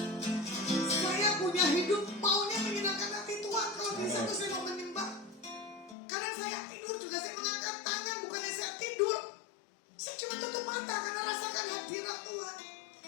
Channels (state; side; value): drops out; right; at 6.0 s